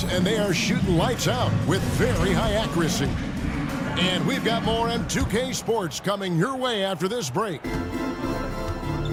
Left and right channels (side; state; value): both; identical; correlation 1.00